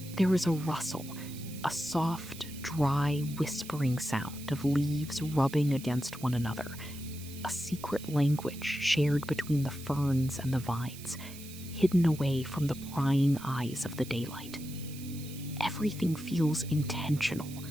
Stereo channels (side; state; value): right; noise; hiss, 15 dB below the sound